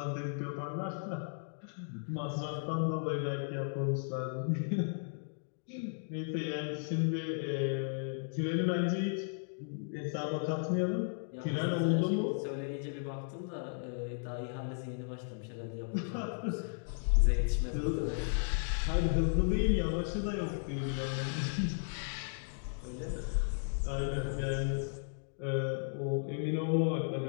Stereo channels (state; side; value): silent; right; digital silence